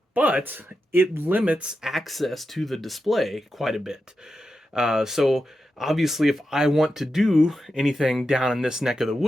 but it limits access to the display quite a bit. So obviously, if I want to do anything down in this neck of the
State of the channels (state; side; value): normal; both; correlation 0.89